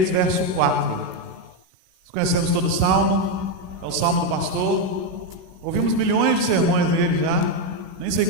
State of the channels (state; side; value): late; left; 16 ms